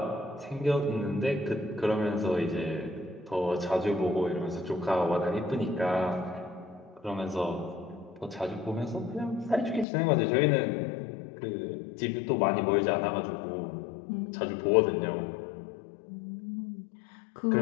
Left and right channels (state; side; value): drops out; right; at 9.9 s